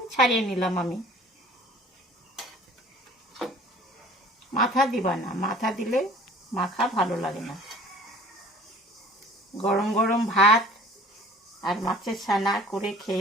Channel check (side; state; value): both; normal; correlation 0.48